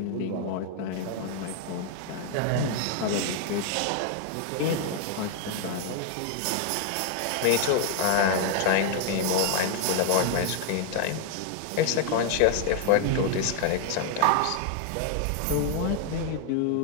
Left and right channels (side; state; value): both; different; correlation 0.00